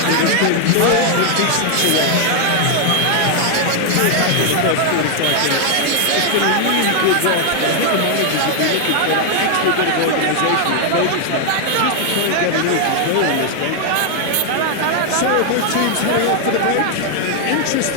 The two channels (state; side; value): different; both; correlation 0.00